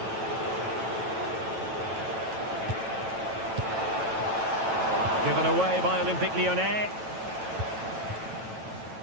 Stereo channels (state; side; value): late; left; 9.1 ms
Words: Given away by Olympique Lyonnais.